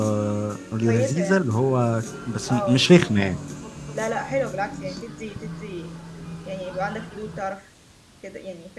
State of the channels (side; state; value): both; identical; correlation 1.00